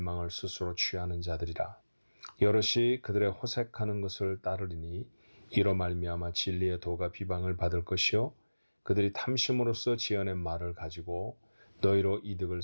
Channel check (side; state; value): both; inverted; correlation -1.00